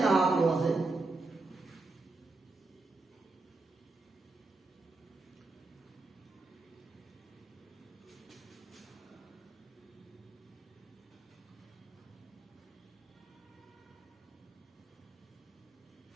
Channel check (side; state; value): left; quieter; 3.4 dB